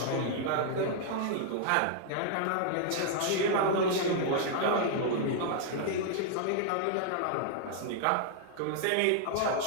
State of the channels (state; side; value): different; both; correlation -0.01